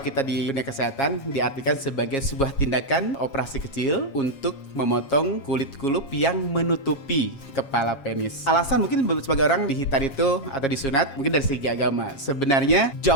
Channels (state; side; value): late; right; 7.3 ms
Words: kita di dunia kesehatan diartikan sebagai sebuah tindakan operasi kecil untuk memotong kulit kulup yang menutupi kepala penis. Alasan mungkin sebagai orang dihitan itu atau disunat mungkin dari segi agama. Sebenarnya